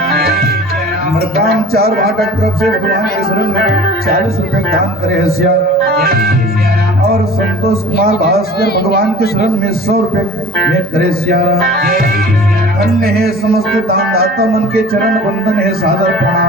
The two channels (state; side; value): normal; both; correlation 0.43